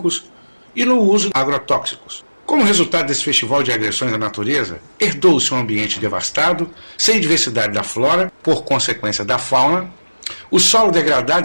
e no uso de agrotóxicos. Como resultado desse festival de agressões à natureza, herdou-se um ambiente devastado, sem diversidade da flora, por consequência da fauna, o solo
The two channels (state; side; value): inverted; both; correlation -1.00